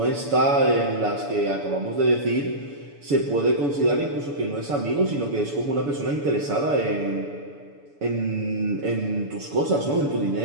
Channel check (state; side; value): late; left; 6.9 ms